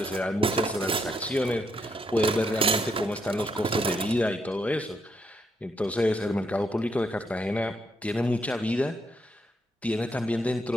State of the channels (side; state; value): both; normal; correlation 0.76